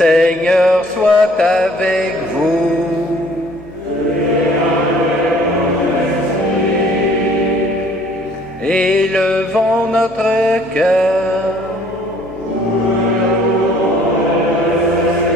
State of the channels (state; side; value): noise; right; rumble, 29 dB below the sound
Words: soit avec vous. Élevons notre cœur.